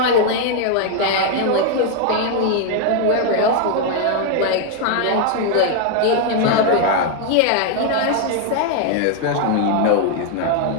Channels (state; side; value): different; both; correlation 0.00